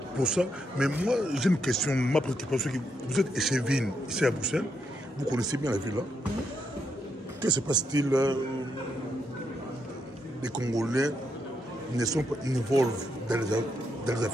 pour ça. Mais moi, j'ai une question, ma préoccupation. Vous êtes échevine ici à Bruxelles. Vous connaissez bien la ville là. Que se passe-t-il? Les Congolais ne sont pas involved dans les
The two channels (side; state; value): both; normal; correlation 0.80